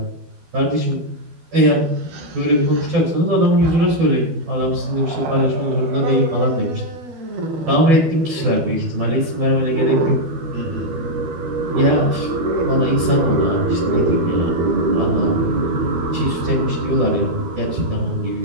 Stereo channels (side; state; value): left; late; 12 ms